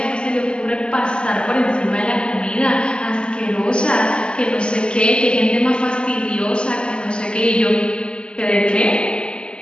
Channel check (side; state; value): right; late; 0.052 ms